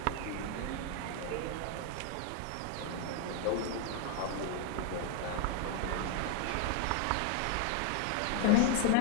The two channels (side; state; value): both; different; correlation 0.01